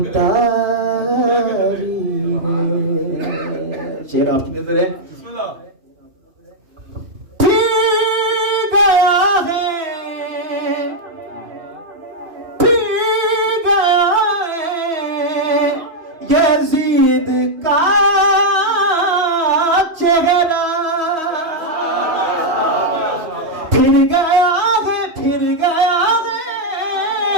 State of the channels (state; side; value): late; left; 3.1 ms